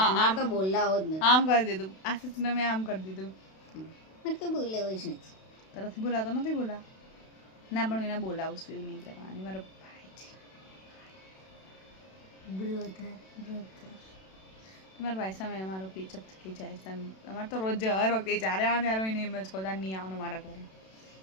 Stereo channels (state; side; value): late; right; 32 ms